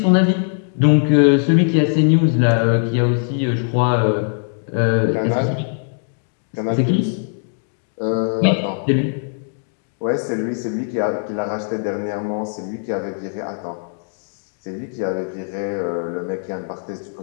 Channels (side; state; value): right; silent; digital silence